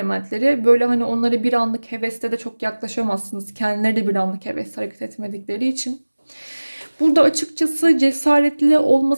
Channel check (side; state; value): both; inverted; correlation -1.00